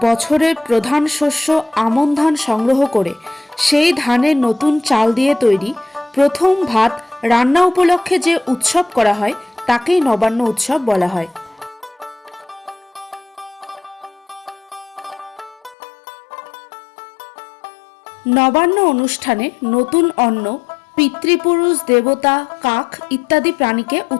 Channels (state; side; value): drops out; right; at 15.8 s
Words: বছরের প্রধান শস্য আমন ধান সংগ্রহ করে সেই ধানের নতুন চাল দিয়ে তৈরি প্রথম ভাত রান্না উপলক্ষে যে উৎসব করা হয় তাকেই নবান্ন উৎসব বলা হয়। নবান্ন অনুষ্ঠানে নতুন অন্ন পিতৃপুরুষ, দেবতা, কাক ইত্যাদি প্রাণীকে